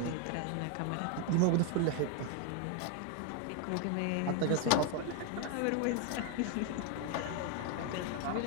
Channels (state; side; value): different; both; correlation 0.01